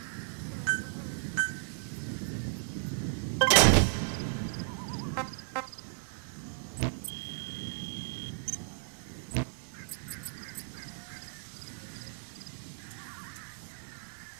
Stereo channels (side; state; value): left; silent; 55 dB below the other